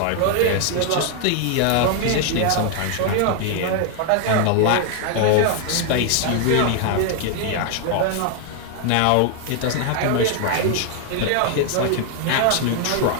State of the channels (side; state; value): both; different; correlation 0.00